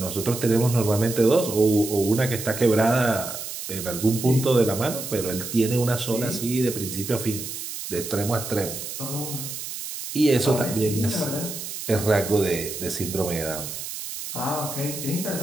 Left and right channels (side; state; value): right; noise; hiss, 8 dB below the sound